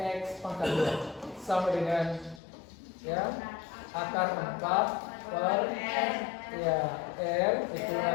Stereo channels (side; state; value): right; drops out; at 2.4 s